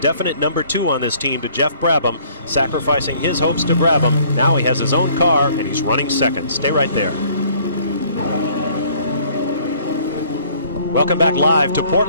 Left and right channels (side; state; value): both; inverted; correlation -0.58